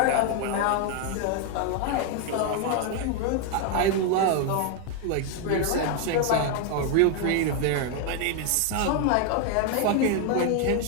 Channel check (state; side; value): different; both; correlation 0.00